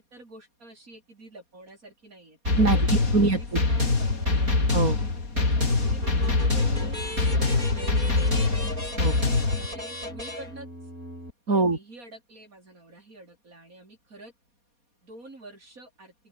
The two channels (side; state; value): left; late; 4.2 ms